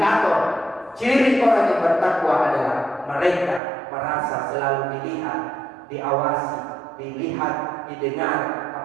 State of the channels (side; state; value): left; drops out; at 3.6 s